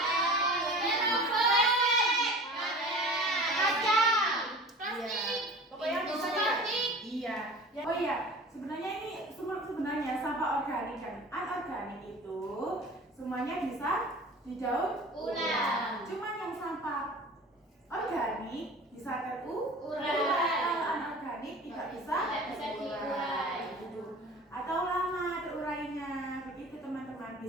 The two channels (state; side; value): normal; both; correlation 0.40